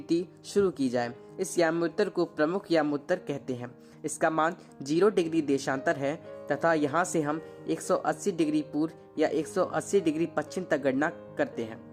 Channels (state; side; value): identical; both; correlation 1.00